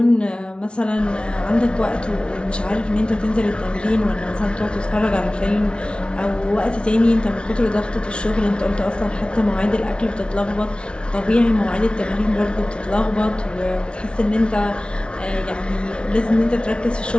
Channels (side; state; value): right; late; 0.057 ms